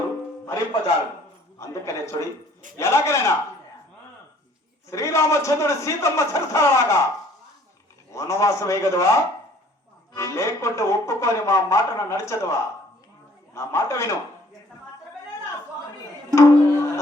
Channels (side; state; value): both; normal; correlation 0.58